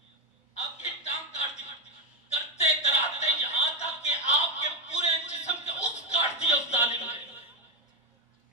آپ کی ٹانگ کاٹ دی. کرتے کراتے یہاں تک کہ آپ کے پورے جسم کے اس کاٹ دیا اس ظالم نے،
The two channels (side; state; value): both; normal; correlation 0.09